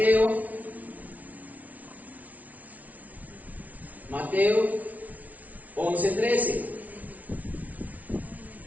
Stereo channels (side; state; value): left; late; 0.072 ms